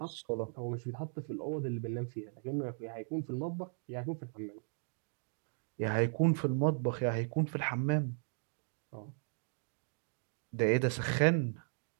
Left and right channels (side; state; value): left; silent; 53 dB below the other